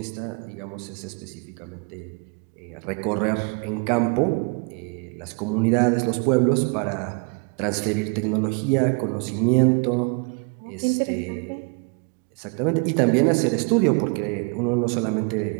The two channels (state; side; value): quieter; left; 35.5 dB